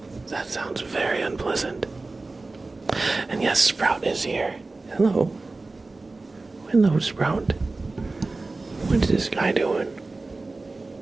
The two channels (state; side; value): quieter; left; 3.4 dB